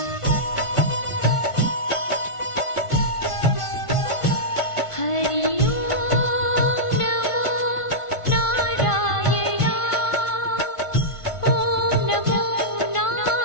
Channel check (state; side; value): late; right; 1.5 ms